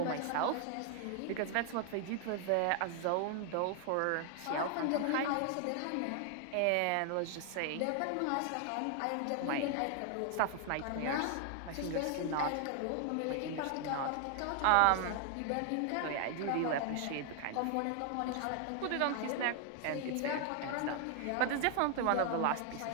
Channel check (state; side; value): different; both; correlation 0.00